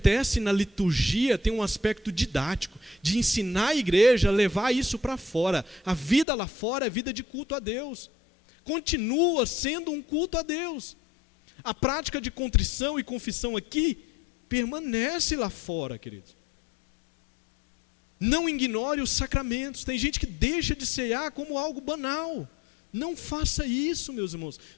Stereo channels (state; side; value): drops out; right; at 6.2 s